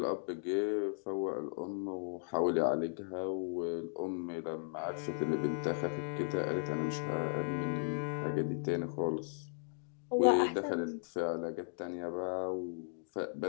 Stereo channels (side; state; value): right; silent; digital silence